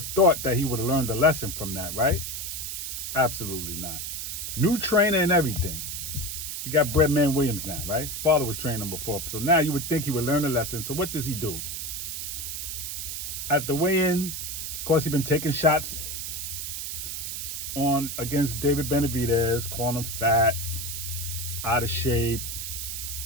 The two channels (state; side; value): noise; right; hiss, 5 dB below the sound